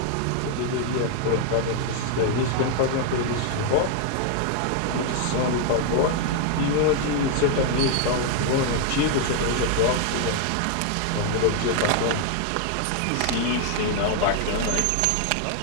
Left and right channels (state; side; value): different; both; correlation 0.00